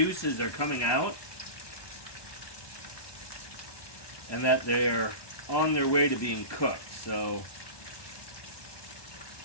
are coming out and that they're on their way to being cooked. So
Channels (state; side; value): late; right; 1.2 ms